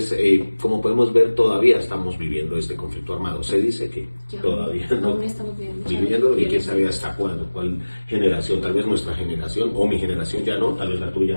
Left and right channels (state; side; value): inverted; both; correlation -1.00